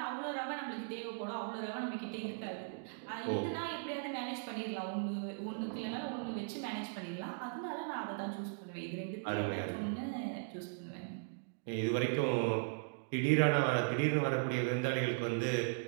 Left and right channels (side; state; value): left; silent; digital silence